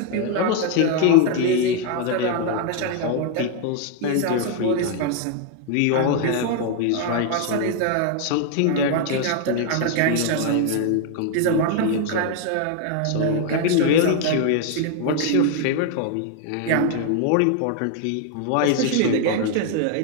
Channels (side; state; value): both; different; correlation 0.01